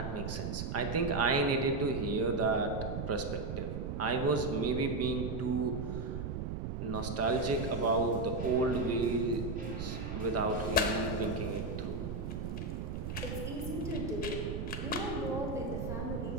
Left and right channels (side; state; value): right; noise; rumble, 4 dB below the sound